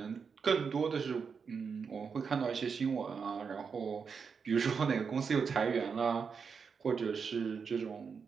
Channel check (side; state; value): left; quieter; 5.9 dB